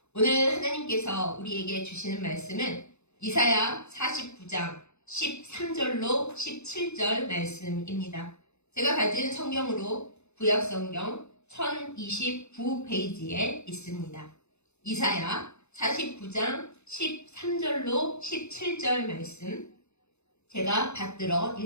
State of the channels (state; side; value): late; right; 0.81 ms